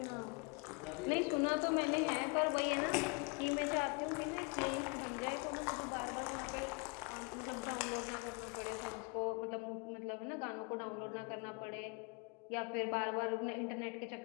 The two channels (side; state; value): right; quieter; 32.0 dB